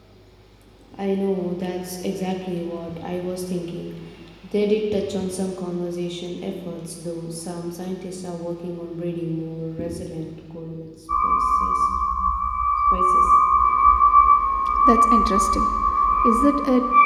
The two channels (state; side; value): identical; both; correlation 1.00